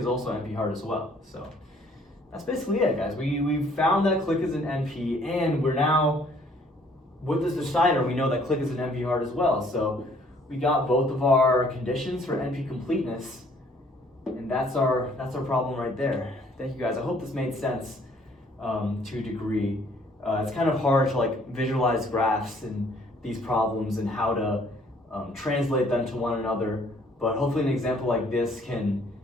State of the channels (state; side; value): normal; both; correlation 0.61